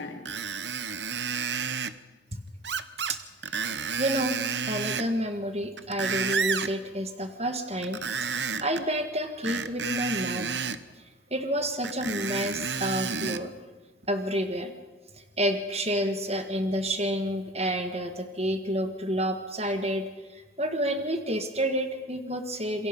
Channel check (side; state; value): both; normal; correlation 0.40